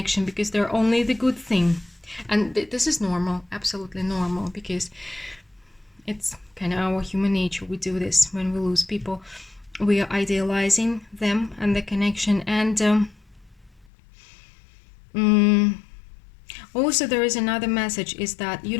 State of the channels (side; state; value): right; drops out; at 13.9 s